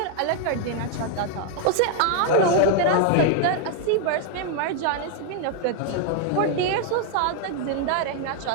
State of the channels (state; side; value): different; both; correlation 0.00